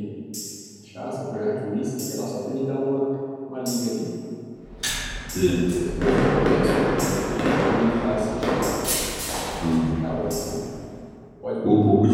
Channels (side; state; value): both; identical; correlation 1.00